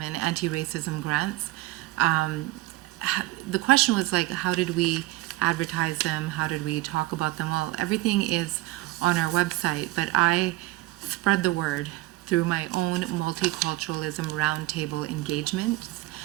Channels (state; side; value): quieter; left; 18.1 dB